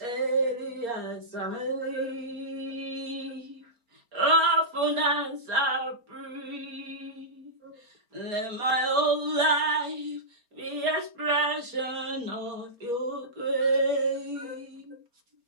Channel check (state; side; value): late; left; 4.3 ms